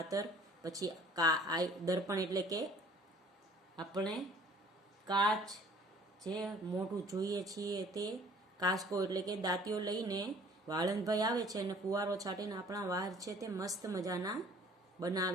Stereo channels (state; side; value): normal; both; correlation 0.53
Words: પછી દર્પણ એટલે કે આપણે કાચ જે મોઢું જોઈએ છીએ તે, કાસ્કો એટલે કે દાંતીઓ લઈને વાળંદભાઈ આવે છે અને ફુવારો છાટીને આપણા વાળ છે તે મસ્ત મજાના